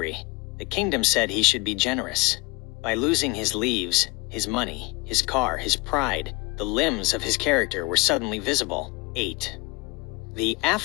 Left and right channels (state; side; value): quieter; right; 25.9 dB